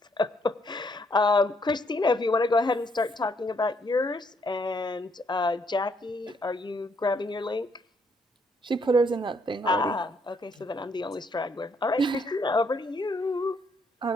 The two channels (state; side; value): normal; both; correlation 0.71